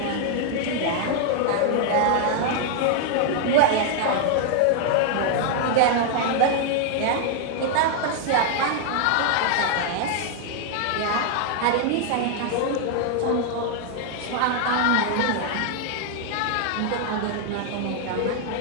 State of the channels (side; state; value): both; different; correlation 0.00